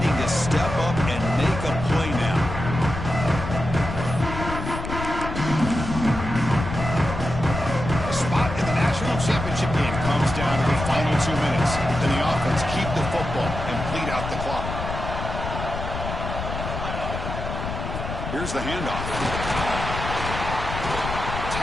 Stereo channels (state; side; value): noise; left; rumble, 6 dB below the sound